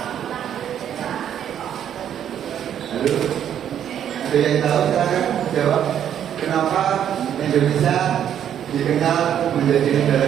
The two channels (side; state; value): left; quieter; 9.7 dB